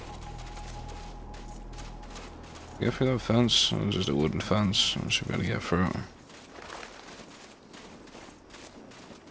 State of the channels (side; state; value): both; identical; correlation 1.00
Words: Go through that fence? Or just a wooden fence? I should be able to get through.